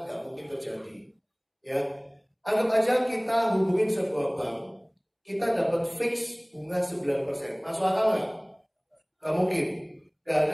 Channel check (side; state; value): both; identical; correlation 1.00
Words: gak mungkin terjadi. Ya, anggap aja kita hubungin sebuah bank, kita dapat fix bunga 9%. Masuk akal nggak? Gak mungkin. Gak